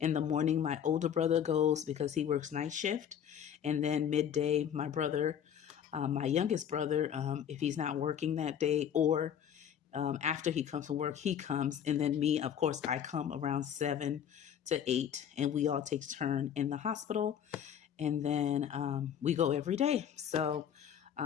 the morning, my older brother goes because he works night shift. And then midday, my brother, my youngest brother, if he's not working that day or after he comes from work, he comes. And then me, of course, I come around 7 to 8 and we all take turn in the hospital. And then we go every day. So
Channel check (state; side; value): quieter; right; 9.0 dB